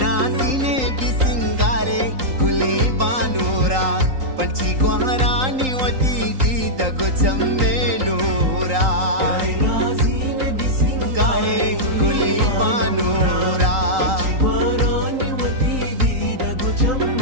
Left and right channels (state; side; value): late; left; 3.8 ms